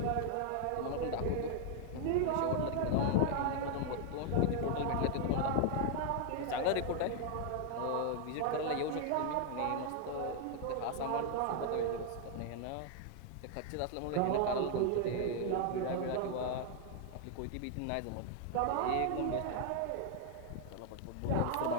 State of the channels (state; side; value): different; both; correlation 0.00